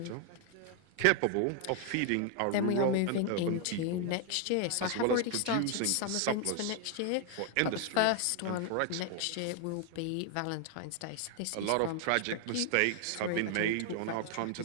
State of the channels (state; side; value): different; both; correlation 0.00